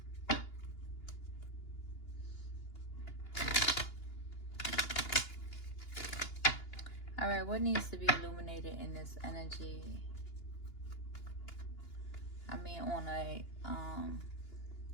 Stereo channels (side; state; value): right; late; 2.9 ms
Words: All right, what needs to be illuminated in this energy? I mean, on a